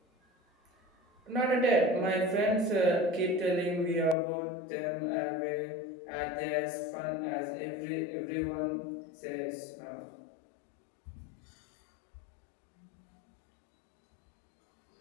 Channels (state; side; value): drops out; right; at 4.2 s